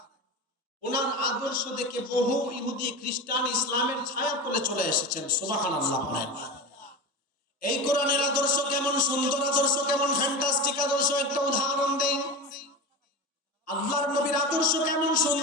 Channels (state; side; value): normal; both; correlation 0.25